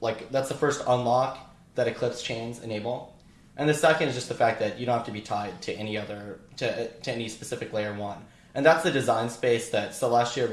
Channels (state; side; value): identical; both; correlation 1.00